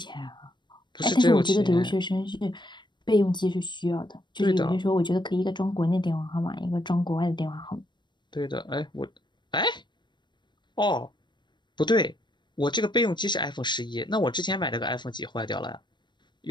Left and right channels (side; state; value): right; late; 0.22 ms